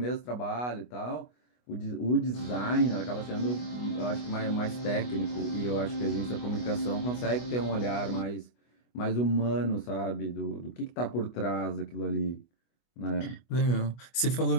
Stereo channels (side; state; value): right; late; 24 ms